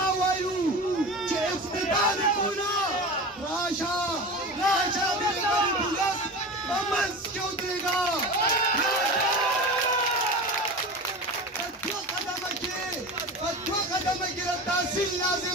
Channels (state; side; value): normal; both; correlation 0.30